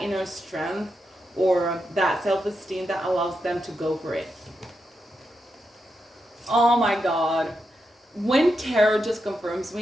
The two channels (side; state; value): both; normal; correlation 0.86